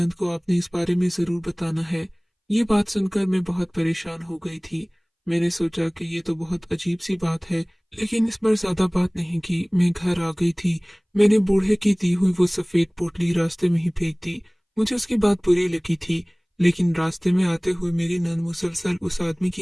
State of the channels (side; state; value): both; identical; correlation 1.00